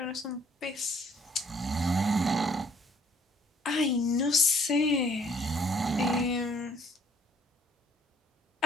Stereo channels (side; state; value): both; normal; correlation 0.61